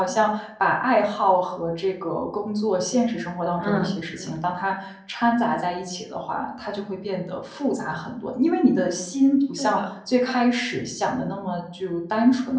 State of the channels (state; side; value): identical; both; correlation 1.00